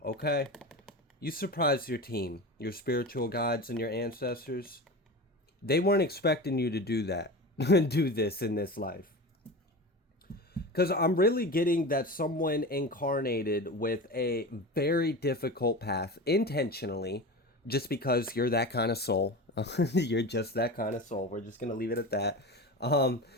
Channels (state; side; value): normal; both; correlation 0.29